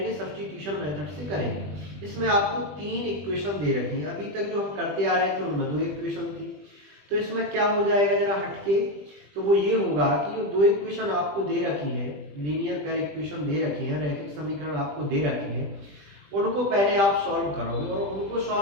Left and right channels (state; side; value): late; left; 20 ms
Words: सब्स्टिट्यूशन मेथड से करेंगे। इसमें आपको 3 इक्वेशन दे रखी हैं। अभी तक जो हम करते आ रहे थे उनमें 2 इक्वेशन थी। तो इसमें क्या हो जाएगा जरा हटके, तो वो ये होगा कि जो 2 इक्वेशन आपको दे रखी है, लीनियर पेयर इक्वेशन दे रखी है, रैखिक समीकरण आपको दे रखे हैं, उनको पहले आप सॉल्व करोगे और उनको